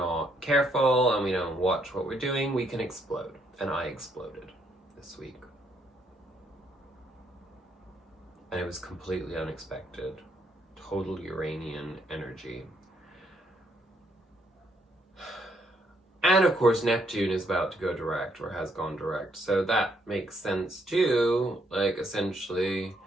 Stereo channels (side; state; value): both; normal; correlation 0.72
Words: careful and we don't watch what we're doing, we can explode. And I exploded this week. And it was completely unexpected. Total Uranian energy. And of course, Neptune is about to go direct, or has gone direct. So that makes sense too. Like, essentially,